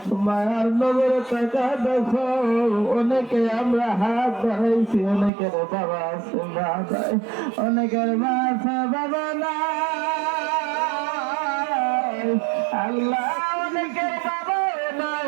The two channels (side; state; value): left; drops out; at 5.3 s